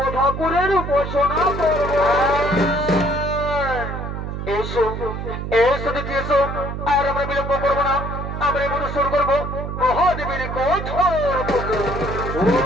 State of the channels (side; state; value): right; noise; hum, 5 dB below the sound